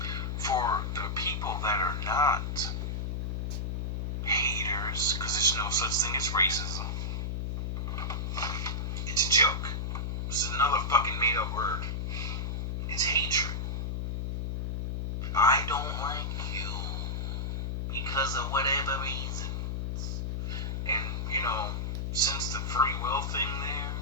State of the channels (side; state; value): left; noise; hum, 2 dB below the sound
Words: For the people that are not haters, because there's no such thing as racism. It's a joke. This is another fucking made-up word. It's hatred. I don't like you because of whatever reasons. And, you know, since the free will thing there,